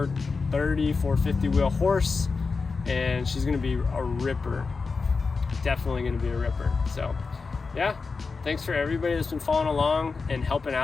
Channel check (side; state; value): right; quieter; 4.5 dB